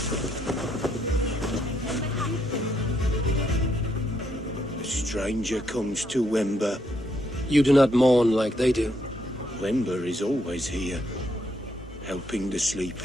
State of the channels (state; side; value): normal; both; correlation 0.75